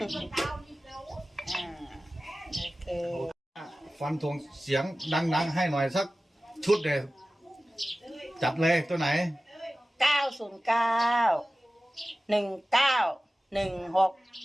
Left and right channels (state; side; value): normal; both; correlation 0.96